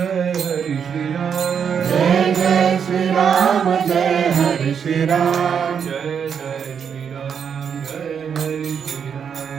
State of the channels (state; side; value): quieter; left; 7.3 dB